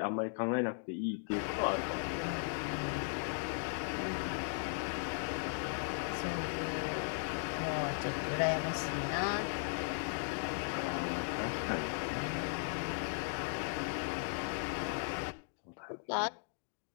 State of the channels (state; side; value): silent; right; digital silence